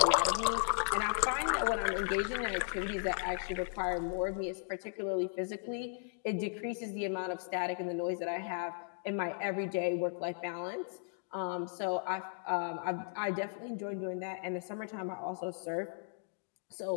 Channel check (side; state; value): right; silent; digital silence